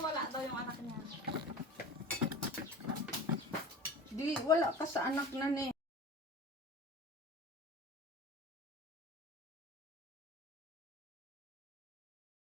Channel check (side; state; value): both; normal; correlation 0.37